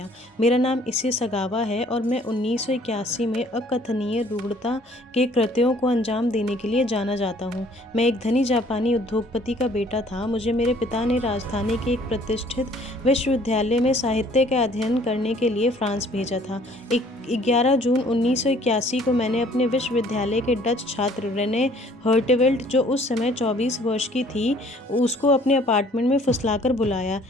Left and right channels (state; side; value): normal; both; correlation 0.57